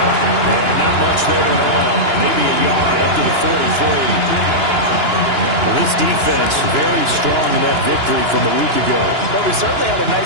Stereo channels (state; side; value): late; left; 2.9 ms